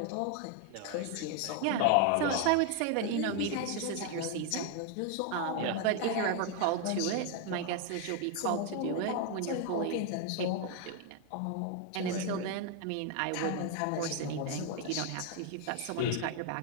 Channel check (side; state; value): both; different; correlation 0.01